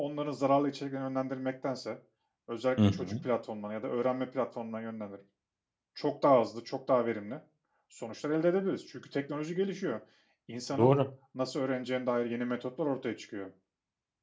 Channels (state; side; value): identical; both; correlation 1.00